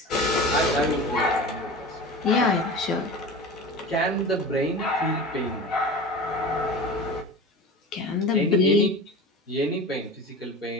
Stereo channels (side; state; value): both; normal; correlation 0.33